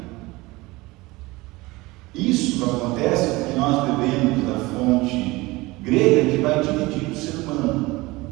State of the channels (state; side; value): quieter; left; 21.5 dB